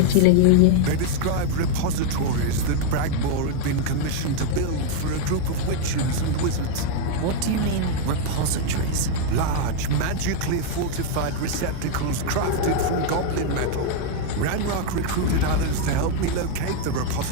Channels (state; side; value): different; both; correlation 0.00